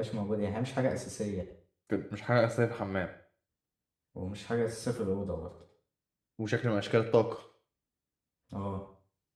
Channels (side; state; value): both; identical; correlation 1.00